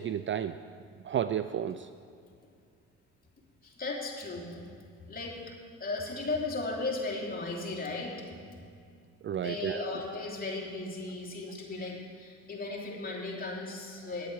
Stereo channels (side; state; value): both; normal; correlation 0.08